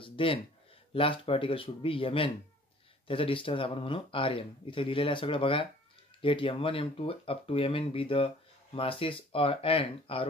then last particle should be mn. त्याचा डिस्टन्स आपण म्हणू rn. इथे लिहिलेलं आहे सगळं बघा. Let m1, m2 up to mn be the masses and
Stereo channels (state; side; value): normal; both; correlation 0.52